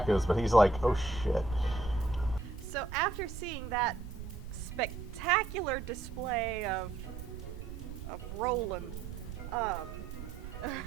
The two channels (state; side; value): noise; right; rumble, 10 dB below the sound